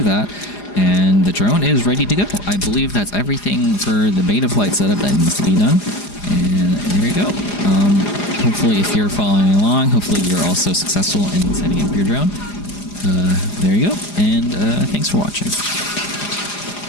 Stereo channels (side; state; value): right; late; 4.9 ms